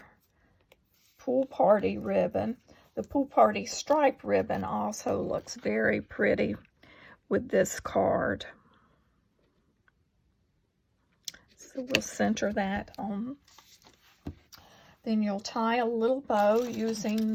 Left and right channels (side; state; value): both; identical; correlation 1.00